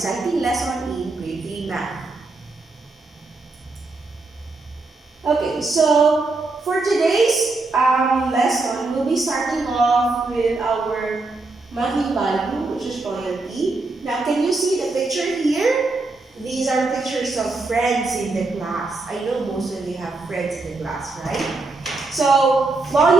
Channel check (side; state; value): left; quieter; 3.5 dB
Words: lesson in grade 3 math. Okay, so for today's lesson, we'll be starting off with our monthly value, which is loyalty. Now, can you see the picture here? These are pictures of friends in the class. I know most of you have friends in the class, right? So,